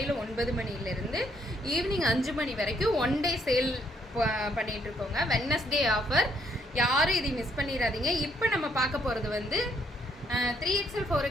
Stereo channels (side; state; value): both; normal; correlation 0.70